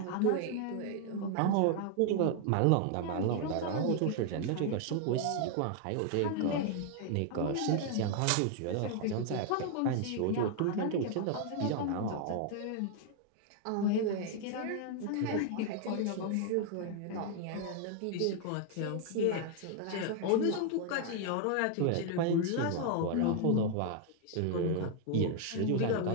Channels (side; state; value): both; different; correlation 0.00